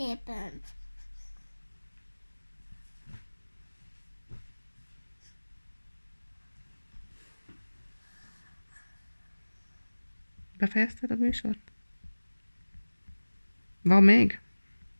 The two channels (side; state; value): both; inverted; correlation -1.00